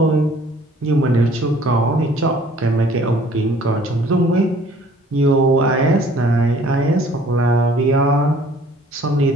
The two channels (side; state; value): both; normal; correlation 0.55